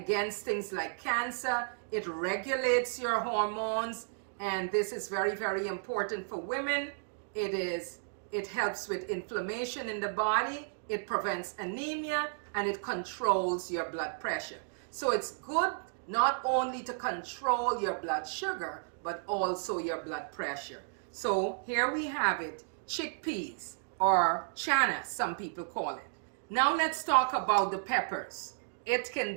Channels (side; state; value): left; silent; digital silence